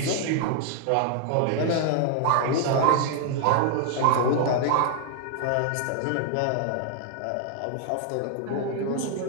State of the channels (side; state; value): both; different; correlation 0.00